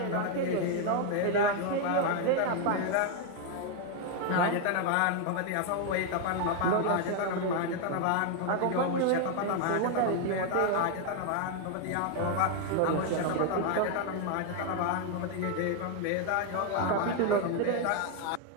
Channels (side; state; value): both; different; correlation 0.01